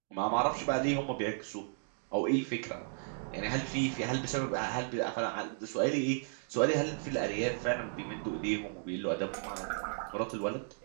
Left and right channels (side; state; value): left; silent; digital silence